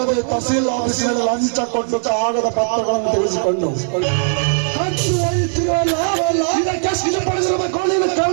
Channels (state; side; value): silent; left; digital silence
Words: ತಹಸೀಲ್ ಆಫೀಸಿನಲ್ಲಿ ಲಂಚ ಕೊಟ್ಟು ಕಾಗದ ಪತ್ರಗಳನ್ನು ತಿಳಿಸಿಕೊಂಡು